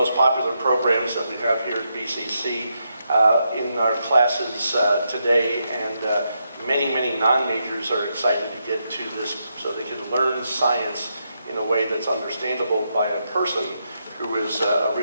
popular programs that we have here at BCC in our classes today, and many non-majors are excited to get to this so they can learn science in a way that's understandable by a person who is a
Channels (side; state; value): both; inverted; correlation -0.82